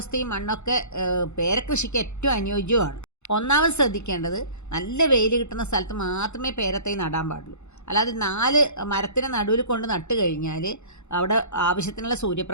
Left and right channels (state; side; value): late; right; 0.82 ms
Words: മണ്ണൊക്കെ പേരക്കൃഷിക്ക് ഏറ്റവും അനുയോജ്യമാണ്. ഒന്നാമത് ശ്രദ്ധിക്കേണ്ടത് നല്ല വെയിൽ കിട്ടുന്ന സ്ഥലത്ത് മാത്രമേ പേരത്തൈ നടാൻ പാടുള്ളൂ. അല്ലാതെ 4 മരത്തിനെ നടുവിൽ കൊണ്ട് നട്ട് കഴിഞ്ഞാൽ അവിടെ ആവശ്യത്തിനുള്ള